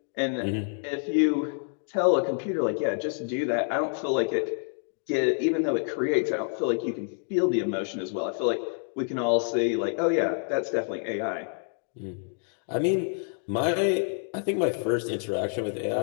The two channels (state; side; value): silent; right; 60 dB below the other